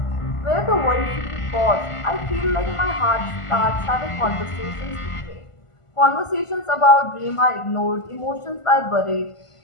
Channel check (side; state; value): right; late; 1.5 ms